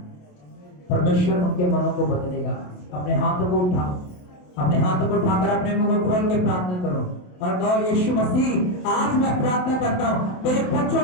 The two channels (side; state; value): right; late; 27 ms